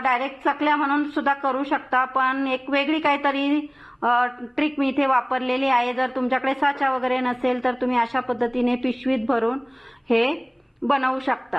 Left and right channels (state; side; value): identical; both; correlation 1.00